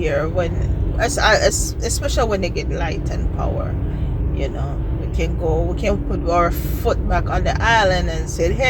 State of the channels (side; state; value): both; identical; correlation 1.00